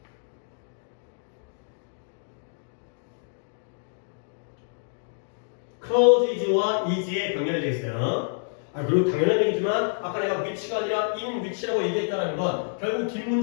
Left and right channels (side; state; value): right; silent; digital silence